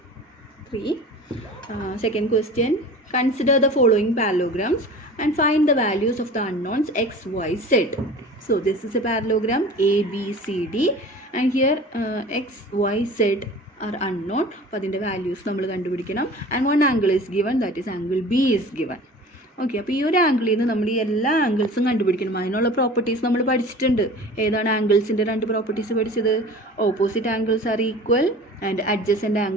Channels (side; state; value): both; normal; correlation 0.40